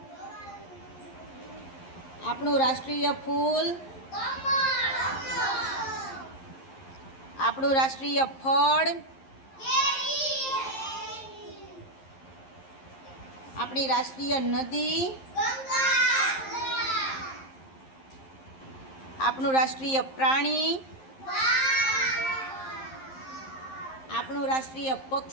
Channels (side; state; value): right; late; 11 ms